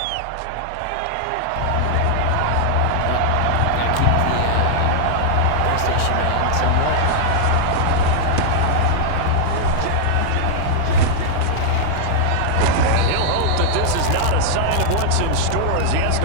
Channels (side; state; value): both; different; correlation -0.01